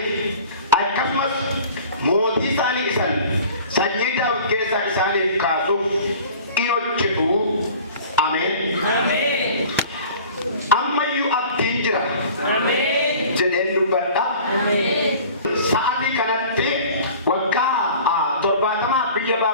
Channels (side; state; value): both; inverted; correlation -0.45